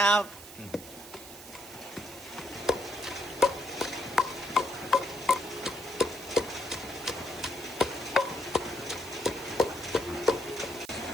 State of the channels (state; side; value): noise; right; hiss, 15 dB below the sound